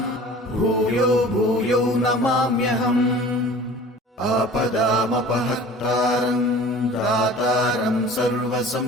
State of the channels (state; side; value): normal; both; correlation 0.44